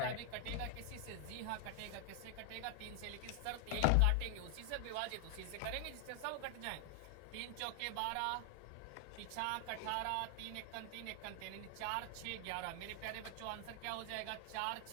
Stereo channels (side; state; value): both; different; correlation 0.00